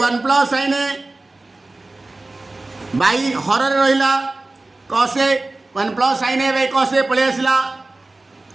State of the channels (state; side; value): quieter; left; 3.1 dB